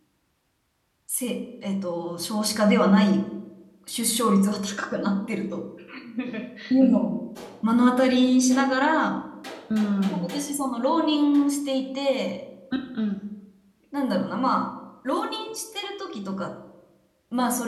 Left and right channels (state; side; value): identical; both; correlation 1.00